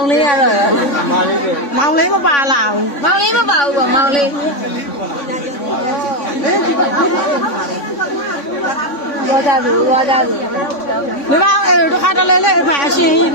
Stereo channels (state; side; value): late; right; 3.5 ms